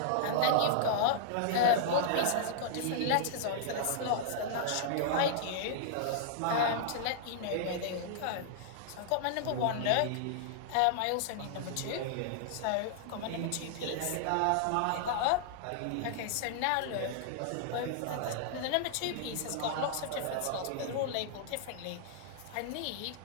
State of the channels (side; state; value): both; different; correlation -0.01